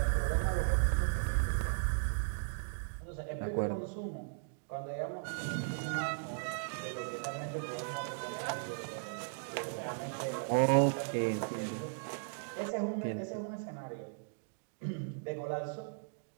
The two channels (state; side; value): silent; left; digital silence